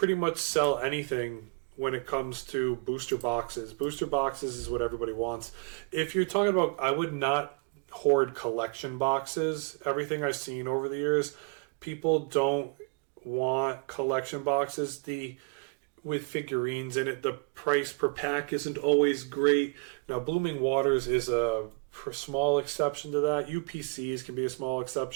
much sell anything when it comes to booster boxes. Booster boxes is what everybody wants. If you're talking about, I would not hoard collection boxes. Everything I've seen over the years, people don't want collection boxes. With figurines in it, the price per pack isn't always great. Now, Blooming Waters is a small exception to that. UPCs can be a small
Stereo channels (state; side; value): quieter; left; 33.0 dB